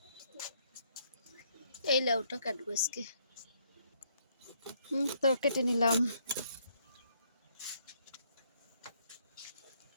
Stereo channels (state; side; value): inverted; both; correlation -0.70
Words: এই লাউটা কাটবো আজকে। তো কেটে নিলাম।